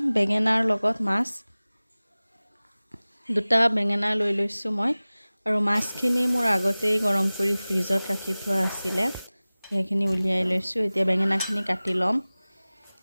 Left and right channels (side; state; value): both; inverted; correlation -0.99